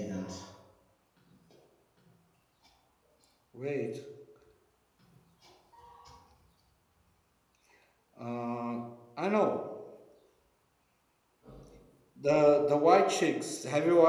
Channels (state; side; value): identical; both; correlation 1.00